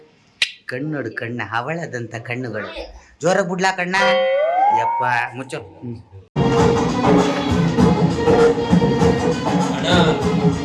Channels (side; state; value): both; identical; correlation 1.00